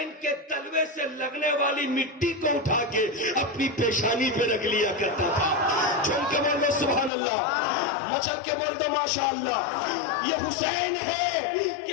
کے تلوے سے لگنے والی مٹی کو اٹھا کے اپنی پیشانی پہ رکھ لیا کرتا تھا. جھوم کے بول دو سبحان اللہ, مچل کے بول دو ماشاء اللہ. یہ حسین ہے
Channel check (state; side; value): drops out; right; at 7.1 s